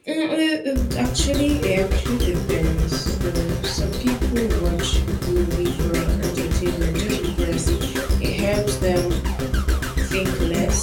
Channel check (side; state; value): both; identical; correlation 1.00